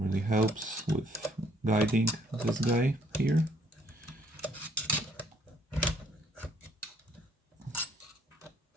helps with guiding this guy here.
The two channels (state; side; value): normal; both; correlation 0.64